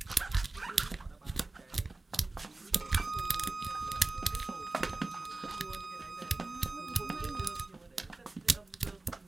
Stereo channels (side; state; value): left; quieter; 3.1 dB